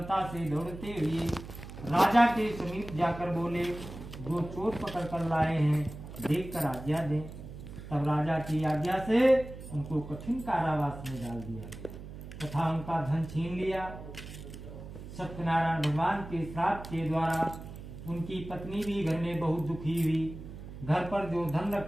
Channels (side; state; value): right; noise; hum, 12 dB below the sound